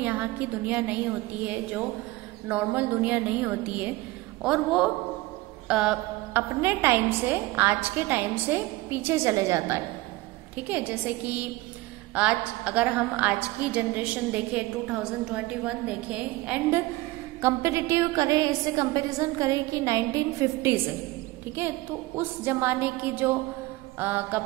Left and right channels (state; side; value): quieter; left; 20.0 dB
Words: की दुनिया नहीं होती है, जो नॉर्मल दुनिया नहीं होती है। और वो अपने टाइम से, आज के टाइम से पीछे चले जाता है, ठीक है। जैसे कि आज अगर हम आज की जनरेशन देखें, 2021 देखें, एंड कंपेरेटिव करें, इससे कंपैरिजन करें कि 1950 से, ठीक है। तो उस जमाने की जो